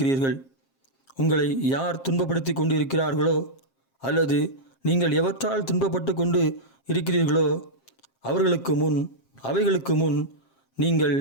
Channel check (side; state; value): right; late; 7.5 ms